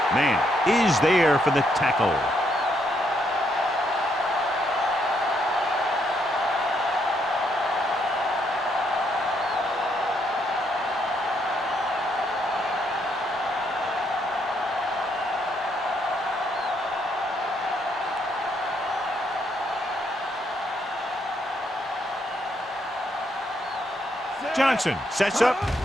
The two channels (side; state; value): both; normal; correlation 0.74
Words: Man is there for the tackle. Johnson sets up,